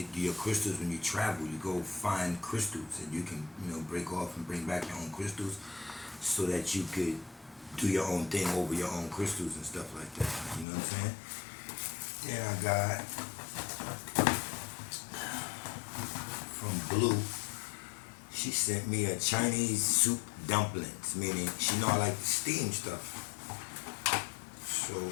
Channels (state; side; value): drops out; right; at 10.7 s